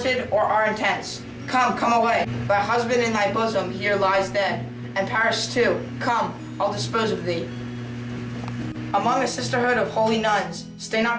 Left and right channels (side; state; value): both; identical; correlation 1.00